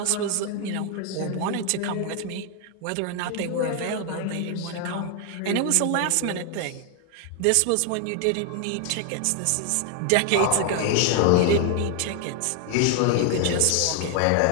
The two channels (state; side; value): different; both; correlation 0.00